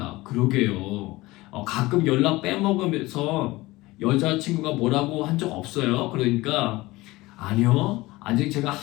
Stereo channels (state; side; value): quieter; right; 20.0 dB